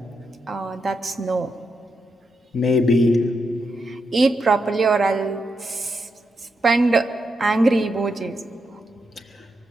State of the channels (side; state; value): both; normal; correlation 0.83